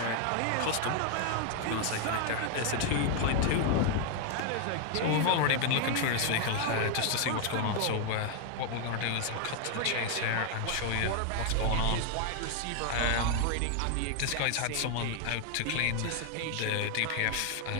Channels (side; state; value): both; different; correlation 0.00